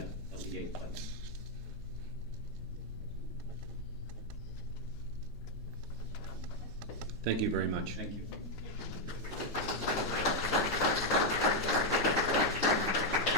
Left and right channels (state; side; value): normal; both; correlation 0.01